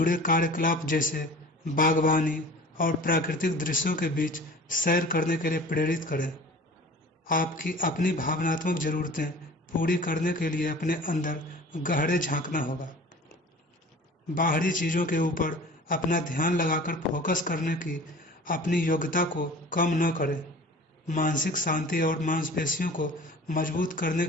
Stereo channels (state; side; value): normal; both; correlation 0.43